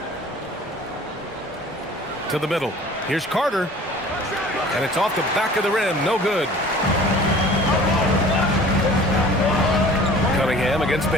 To the middle. Here's Carter. And it's off the back of the rim. No good. Cunningham against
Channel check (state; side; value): normal; both; correlation 0.47